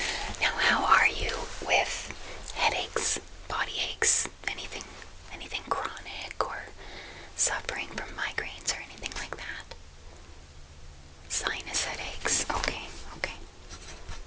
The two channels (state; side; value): identical; both; correlation 1.00